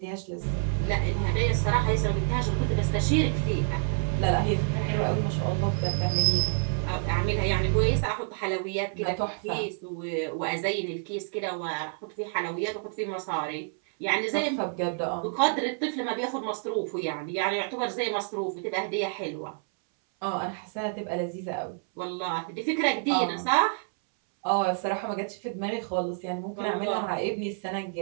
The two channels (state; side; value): silent; left; 59 dB below the other